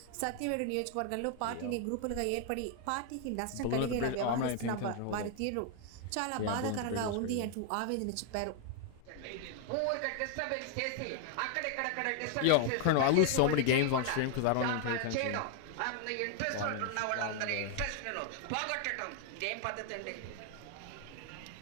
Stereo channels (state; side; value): different; both; correlation 0.00